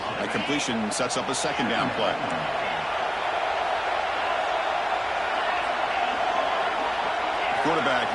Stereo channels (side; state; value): both; identical; correlation 1.00